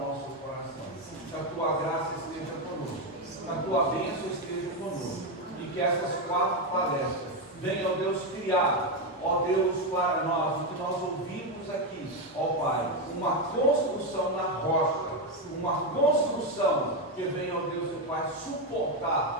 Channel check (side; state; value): both; normal; correlation 0.08